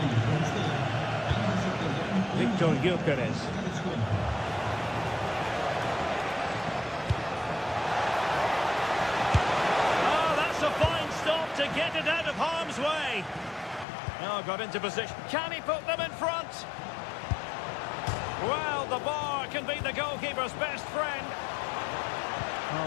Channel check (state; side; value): drops out; right; at 13.9 s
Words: Victor Gyökeres. Oh, that's a fine stop to get it out of harm's way. Oh, got into position. Can he put them in front? Well, the bar can be the goalkeeper's best friend.